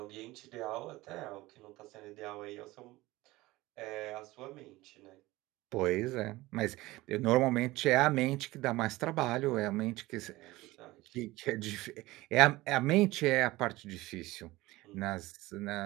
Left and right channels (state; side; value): quieter; left; 19.2 dB